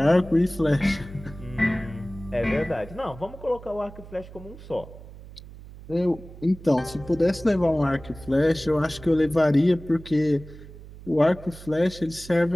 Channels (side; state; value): right; noise; hum, 17 dB below the sound